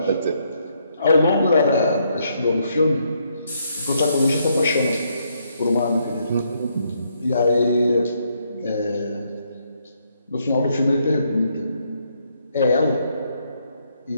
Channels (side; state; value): both; inverted; correlation -0.74